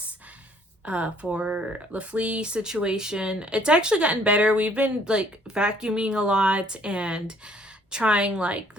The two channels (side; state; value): both; normal; correlation 0.61